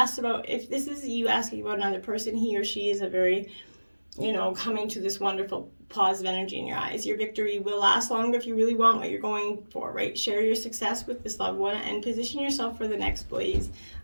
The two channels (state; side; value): inverted; both; correlation -1.00